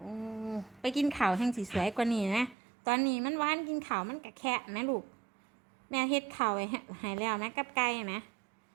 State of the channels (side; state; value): left; drops out; at 2.6 s